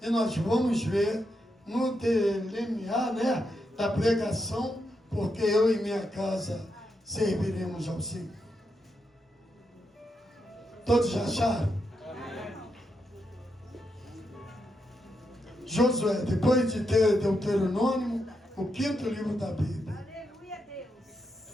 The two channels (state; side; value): normal; both; correlation 0.83